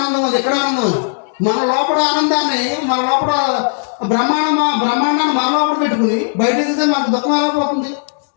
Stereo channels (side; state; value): right; silent; digital silence